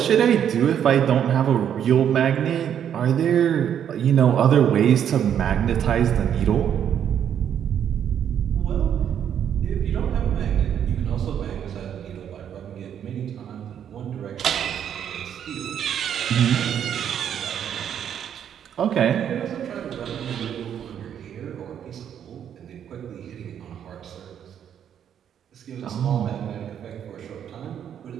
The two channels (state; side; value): quieter; left; 9.2 dB